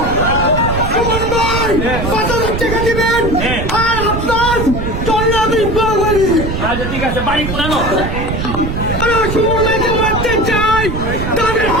সুমন ভাই 5000 টাকা দিবেন আর আপনার চলে আমি বাঙালি। আচ্ছা ঠিক আছে, বাড়ি পুরানো সুমন ভাইকে মারতে চাই, তাদের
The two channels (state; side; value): noise; right; rumble, 4 dB below the sound